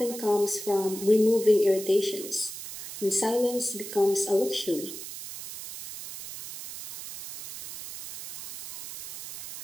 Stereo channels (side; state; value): right; noise; hiss, 11 dB below the sound